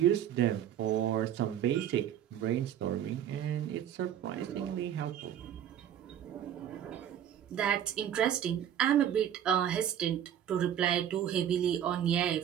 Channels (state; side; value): quieter; left; 10.1 dB